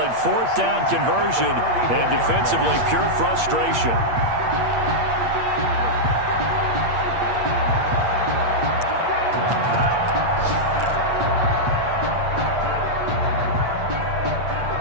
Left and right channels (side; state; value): left; late; 8.6 ms